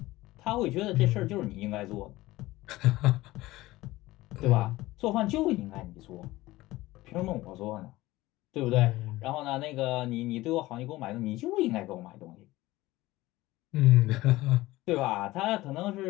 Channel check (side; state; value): right; quieter; 18.2 dB